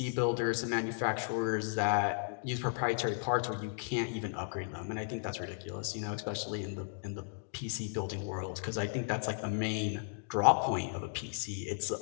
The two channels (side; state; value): right; silent; digital silence